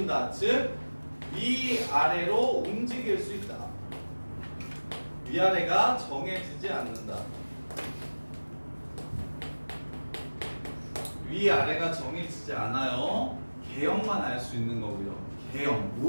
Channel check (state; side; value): inverted; both; correlation -1.00